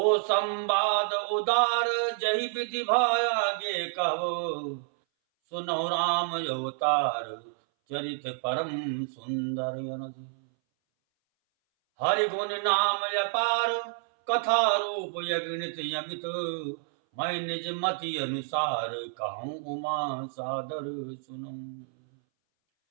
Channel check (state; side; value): silent; left; 59 dB below the other